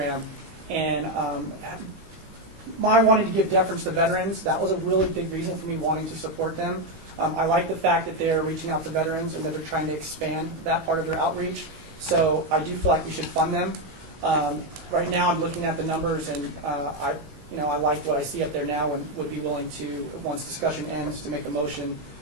and my wanting to give deference to veterans, that was a really big reason for me wanting to support them. I like the fact that they're reaching out to veterans and that they're trying to expand that part of their outreach. So I do feel like we should fund them. Right now, I'm looking at the numbers, and I like what I see up there now, and would be willing to, once discussion ends, to make a motion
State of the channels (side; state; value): left; late; 19 ms